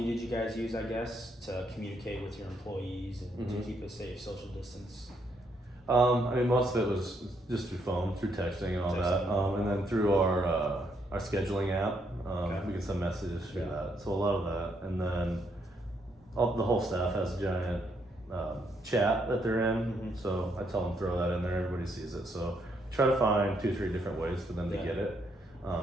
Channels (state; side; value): normal; both; correlation 0.74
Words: did you guys use, I guess, to communicate with your employees and to keep a safe social distance? Most of it was just through phone, through texting and all that, and then through our scheduling app. We can send messages through that. So a lot of that, and then the whole staff has a giant chat that they're in. So I tell them throw that in there. Everybody sees it. So try to find 2-3 different ways for them to get it,